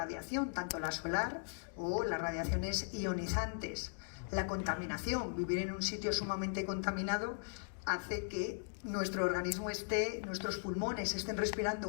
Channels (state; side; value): silent; right; digital silence